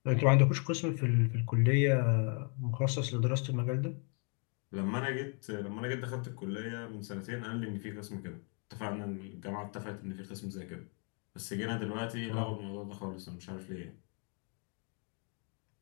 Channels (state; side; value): quieter; right; 37.5 dB